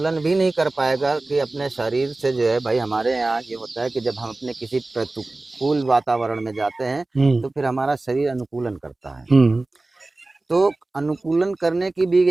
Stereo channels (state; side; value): quieter; left; 3.1 dB